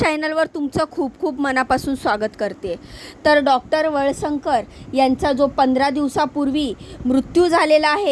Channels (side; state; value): both; identical; correlation 1.00